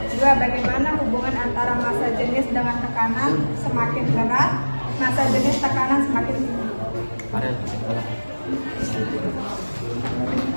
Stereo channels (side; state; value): both; inverted; correlation -1.00